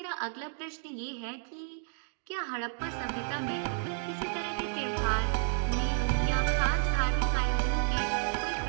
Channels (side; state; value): left; silent; digital silence